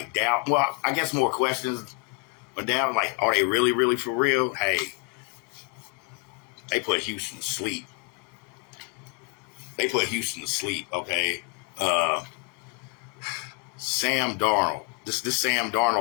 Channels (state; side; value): quieter; right; 31.2 dB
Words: doubt. Well, I guess more questions, but doubt, like, are they really, really for real? Hey, They put Houston to sleep. Okay. Sam Darnold. This Sam